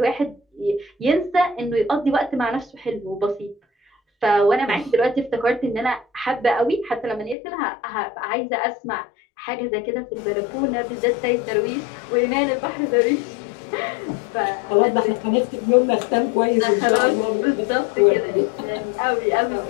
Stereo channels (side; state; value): right; drops out; at 7.4 s